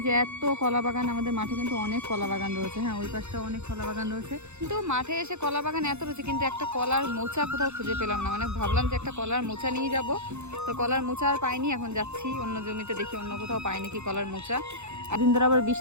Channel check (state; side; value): late; left; 0.82 ms